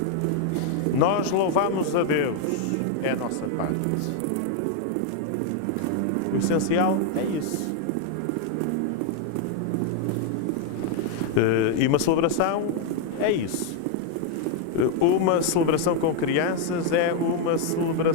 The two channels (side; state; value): both; different; correlation 0.01